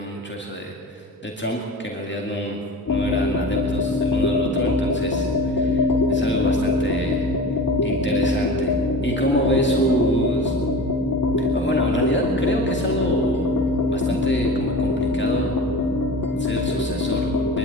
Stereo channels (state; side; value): normal; both; correlation 0.34